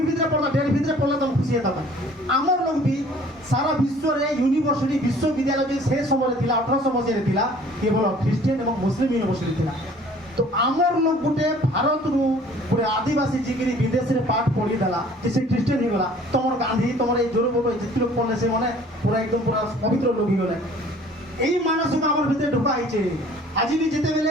भितर पड़ता डेढ़ भितर पड़ला तुम खुशी होता आमर लोग भी सारा विश्व रे यूनिवर्सिटी विश्वविद्यालय जो से समय थिला 1800 मसीह थिला केवल ख्रिस्टियन एवं मुस्लिम यूनिवर्सिटी थिला तो आमर लोग गुटे भारत रु गुटे आदिवासी जिगिरी विदेश रे पाठ पढ़ी देला जैसे ख्रिस्टियन ही गला तमर गांधी तमर ए जोर बोलो जितने लोग पढ़ले से माने पूरा एकदम पूरा पवित्र लोग ही गले एई मानस को आमर भितर ढुका आइছে आज भी जेते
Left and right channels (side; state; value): both; normal; correlation 0.52